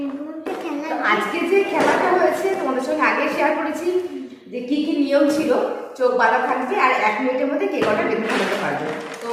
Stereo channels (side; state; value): both; identical; correlation 1.00